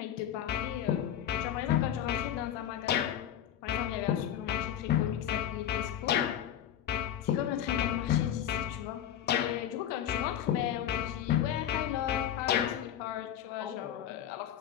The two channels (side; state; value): right; quieter; 10.5 dB